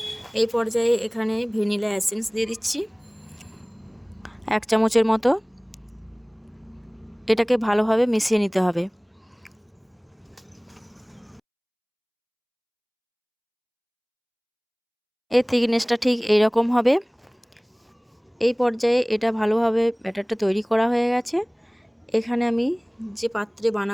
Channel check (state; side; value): identical; both; correlation 1.00